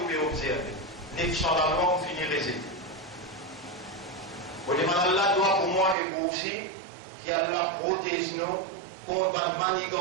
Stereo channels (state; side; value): drops out; left; at 6.0 s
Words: pouvez observer. 900 la loi, vous finirez résultat. Vous demandez Allah doit pour moi et vous aussi, qu'Allah protège nous contre la